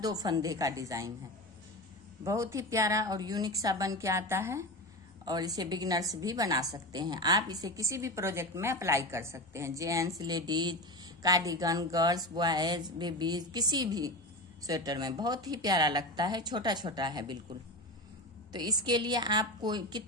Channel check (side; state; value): both; normal; correlation 0.23